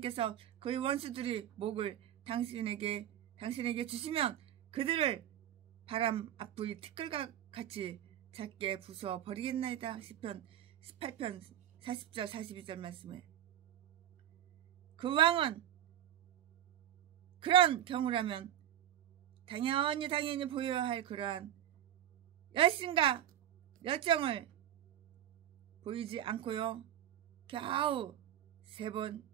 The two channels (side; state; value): left; quieter; 11.3 dB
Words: 그의 원수들의 목을 당신에게 주시면 그들을 바람 앞의 티끌과 같이 작게 부숴 버리겠나이다. 시편 18편 40절 42절 말씀에. 그 왕은 그런 경우라면 당연히 보여야 할 그러한 열심과 열정을 보이지 않고요. 겨우 3번